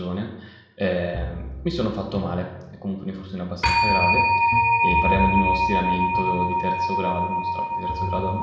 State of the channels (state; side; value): identical; both; correlation 1.00